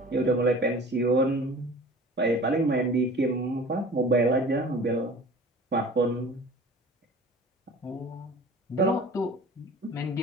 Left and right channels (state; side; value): normal; both; correlation 0.42